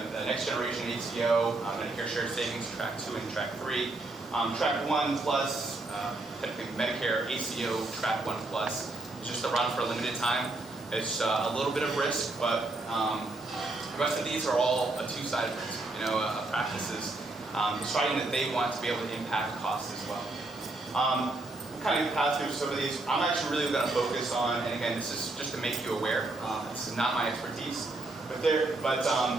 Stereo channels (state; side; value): quieter; left; 3.0 dB